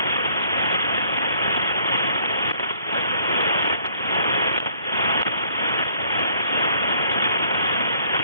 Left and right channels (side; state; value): both; inverted; correlation -0.61